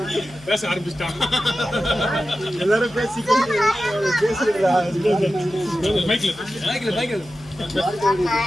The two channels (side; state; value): left; noise; hum, 22 dB below the sound